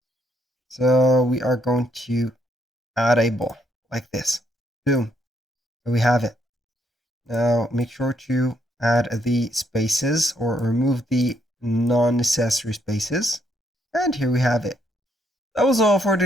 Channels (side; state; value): both; normal; correlation 0.73